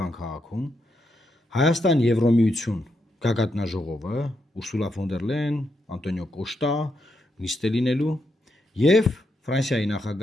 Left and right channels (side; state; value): both; normal; correlation 0.82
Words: քաղաքում, Հայաստան Եվրոմիություն գագաթնաժողովը, Ուրսուլա ֆոն դեր Լեյեն, Անտոնիո Կոշտա նիստ է լինելու եւ Ֆրանսիայի